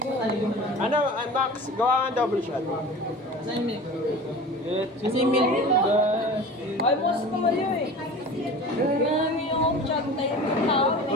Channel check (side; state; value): both; normal; correlation 0.37